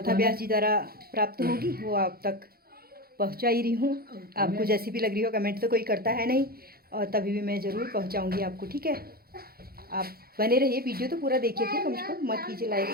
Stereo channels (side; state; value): left; late; 0.44 ms